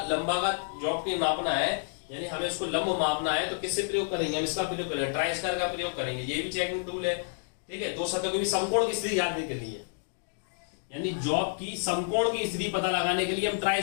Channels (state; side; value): silent; right; digital silence